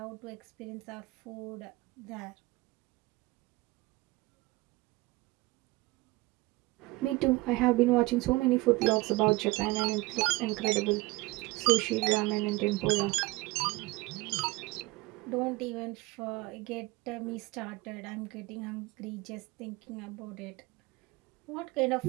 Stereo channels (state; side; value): quieter; left; 22.0 dB